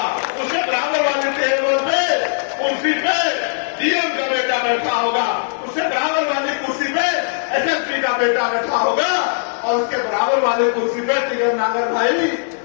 उसके बराबर वाली टेबल पे कुर्सी पे डीएम का बेटा बैठा होगा, उसके बराबर वाली कुर्सी पे एसएसपी का बेटा बैठा होगा और उसके बराबर वाली कुर्सी पे टिगर नागर भाई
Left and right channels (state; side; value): silent; right; digital silence